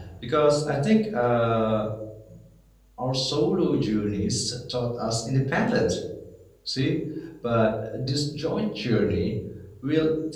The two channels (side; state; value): both; identical; correlation 1.00